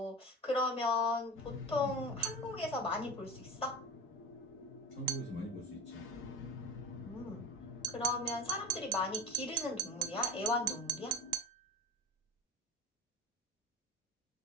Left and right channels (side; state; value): both; normal; correlation 0.30